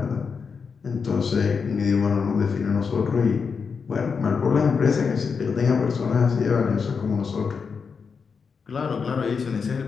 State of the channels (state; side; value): quieter; right; 5.6 dB